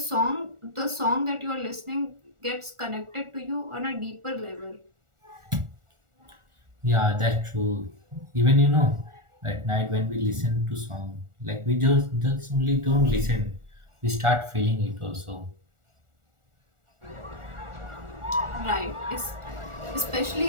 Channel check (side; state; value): left; late; 1.4 ms